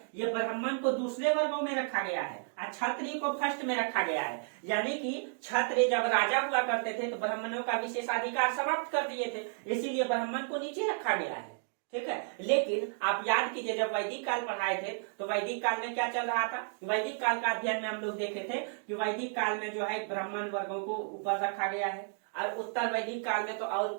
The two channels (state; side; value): silent; left; 56 dB below the other